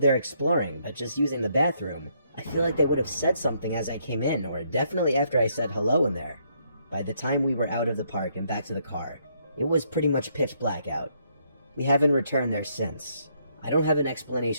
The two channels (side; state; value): both; inverted; correlation -0.72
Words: exploring, but just using the bathroom, I feel like they would have said something as I came in, or definitely after I said hello in there. By the time we were out of the park and back to the car, it was pretty much pitch black out. We haven't returned there since. I don't have an